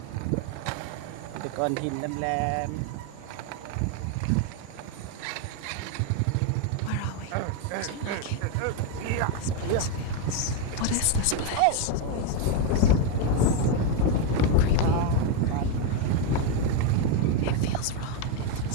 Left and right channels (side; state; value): both; different; correlation 0.02